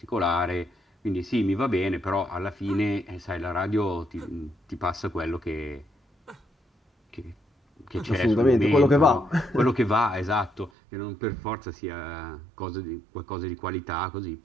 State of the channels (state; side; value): drops out; left; at 10.7 s